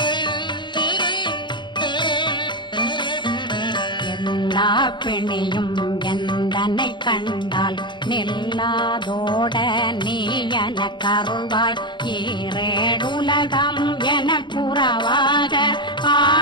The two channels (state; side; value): late; right; 0.22 ms